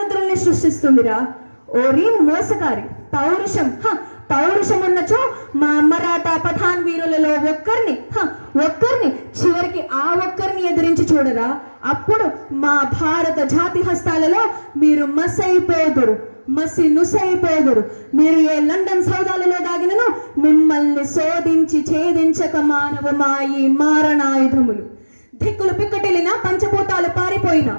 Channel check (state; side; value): inverted; both; correlation -1.00